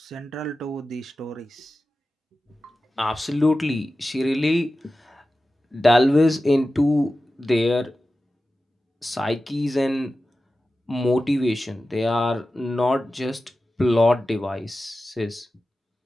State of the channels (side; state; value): both; normal; correlation 0.94